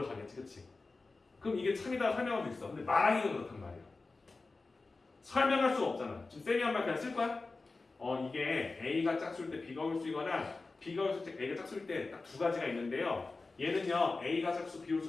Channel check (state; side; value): quieter; right; 3.7 dB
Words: 그렇지? 그럼 이게 참이다 설명할 수 있어. 근데 말하기가 그렇단 말이야. 설명할 수가 없잖아. 지금 쌤이 한 말 그냥 쓸 거야? 이게 A가 짝수일 때 B가 홀수이거나 B가 홀수일 때 A가 짝수일 때 딱 두 가지가 있는데요. 얘는요 A가 짝수 B